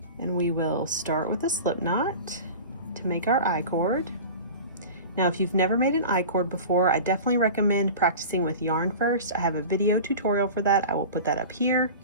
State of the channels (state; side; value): inverted; both; correlation -0.34